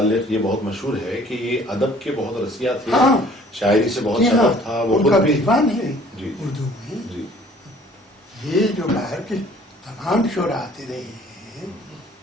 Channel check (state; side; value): normal; both; correlation 0.54